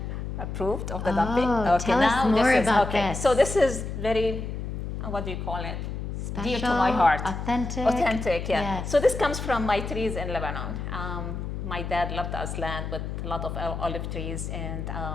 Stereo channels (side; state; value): left; noise; hum, 5 dB below the sound